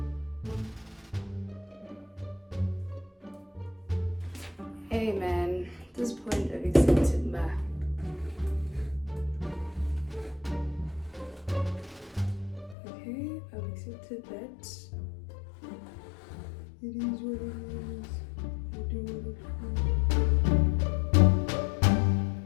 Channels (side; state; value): right; drops out; at 12.8 s